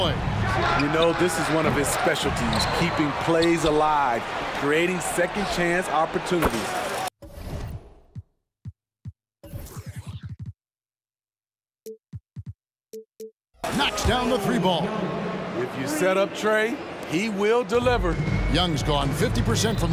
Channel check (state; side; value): identical; both; correlation 1.00